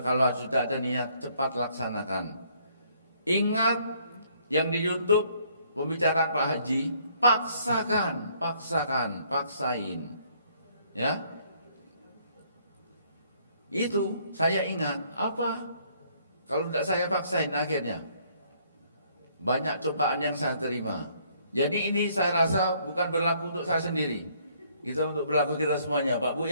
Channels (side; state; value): both; inverted; correlation -0.65